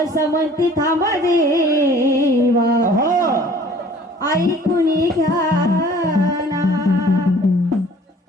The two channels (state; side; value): normal; both; correlation 0.51